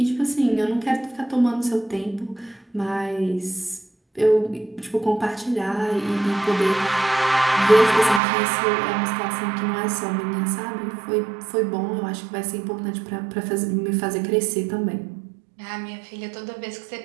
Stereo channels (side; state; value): left; drops out; at 8.2 s